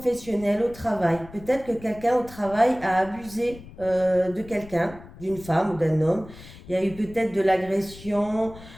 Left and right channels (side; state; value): left; noise; rumble, 18 dB below the sound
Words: au travail. Peut-être que quelqu'un au travail a abusé de quelqu'un, d'une femme ou d'un homme. Il y a eu peut-être de l'agression.